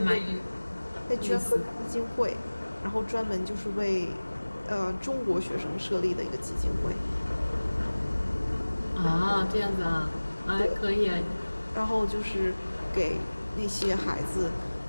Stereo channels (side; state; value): both; inverted; correlation -1.00